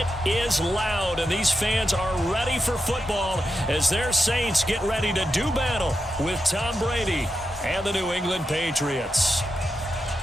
is loud, and these fans are ready for football as their Saints get ready to do battle with Tom Brady and the New England Patriots.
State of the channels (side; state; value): both; normal; correlation 0.88